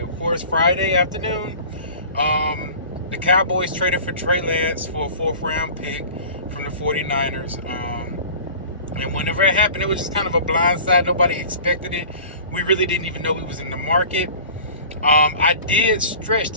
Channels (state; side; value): inverted; both; correlation -0.42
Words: of course, Friday afternoon. The Cowboys traded for Trey Lance for a 4th-round pick from the 49ers. And whenever it happened, it was just kind of a blindside. Nobody expected it. We really didn't even know he was in the market. I did stretch